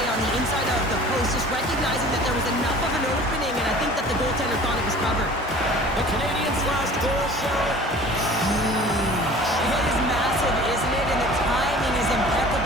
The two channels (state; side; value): normal; both; correlation 0.45